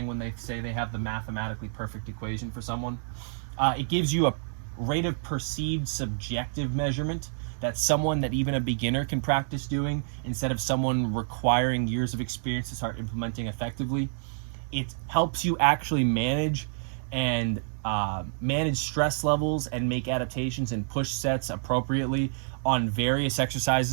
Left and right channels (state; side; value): silent; left; digital silence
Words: when they say they have the mathematically perfect equation for someone. It gives you a rate of perceived subjective measurement that's someone that even a beginner can practice doing instead of someone requiring years of experience to start implementing effectively. It helps you actually manage stress levels and make adaptations and push sets appropriately on various